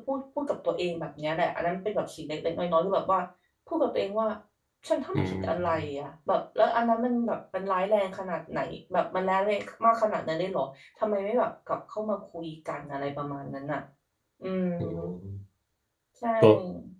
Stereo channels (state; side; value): identical; both; correlation 1.00